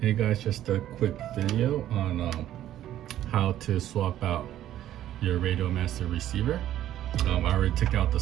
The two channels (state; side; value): quieter; left; 12.4 dB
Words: Hey guys, just a quick video on how to swap out your Radio Master receiver. I already took out the